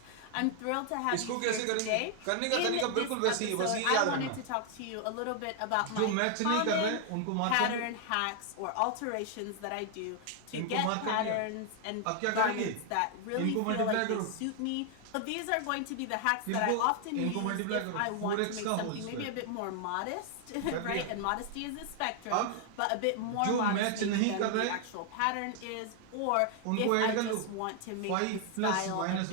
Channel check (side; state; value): both; different; correlation 0.00